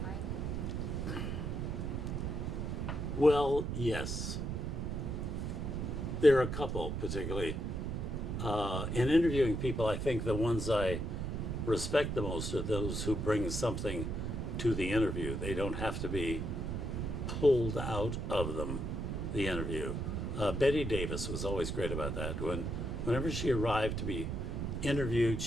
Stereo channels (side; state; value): right; noise; rumble, 2 dB below the sound